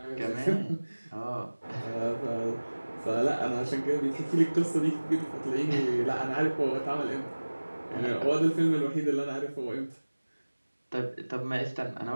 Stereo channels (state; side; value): inverted; both; correlation -1.00